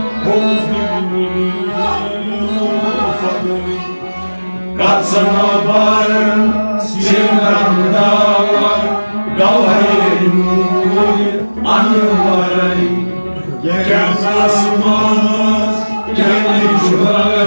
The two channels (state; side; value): inverted; both; correlation -1.00